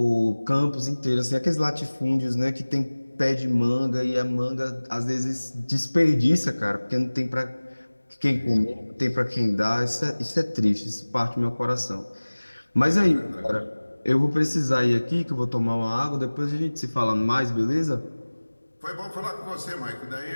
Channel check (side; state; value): both; inverted; correlation -1.00